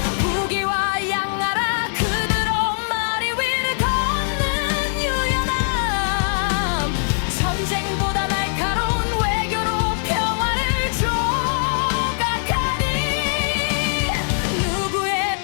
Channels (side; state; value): right; silent; 65 dB below the other